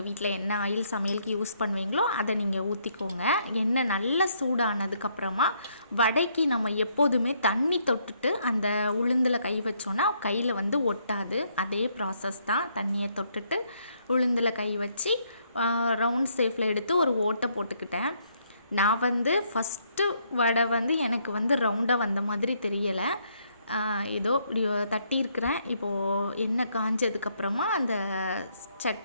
வீட்டில் என்ன ஆயில் சமையலுக்கு யூஸ் பண்ணுவீங்களோ அதை நீங்கள் ஊற்றிக்கோங்க. எண்ணெய் நல்லா சூடானதுக்கப்புறமா வடைக்கு நம்ம எப்போதுமே தண்ணி தொட்டுட்டு அந்த உளுந்தில் கை வச்சோன்னா கையில் ஒட்டாது. அதே ப்ராசஸ் தான். தண்ணியை தொட்டுட்டு உளுந்தில் கை வச்சு ரவுண்ட் ஷேப்பில் எடுத்து ஒரு ஓட்டை போட்டுக்கிட்டேன். நான் ஃபஸ்ட்டு வடை எனக்கு ரவுண்டாக வந்த மாதிரி தெரியலை. ஏதோ இப்படி தட்டியிருக்கிறேன். இப்போது எண்ணெய் காஞ்சதுக்கப்புறமா அந்த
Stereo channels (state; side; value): inverted; both; correlation -0.71